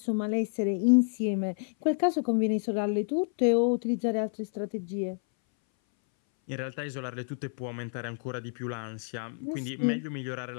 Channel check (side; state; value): right; silent; 58 dB below the other